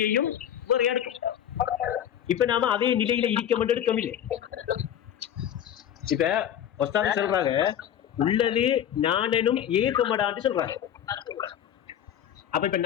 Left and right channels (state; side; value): quieter; right; 10.0 dB